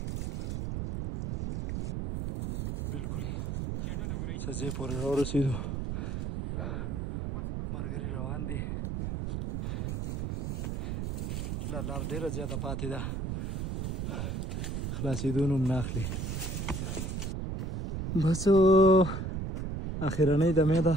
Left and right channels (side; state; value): right; noise; rumble, 3 dB below the sound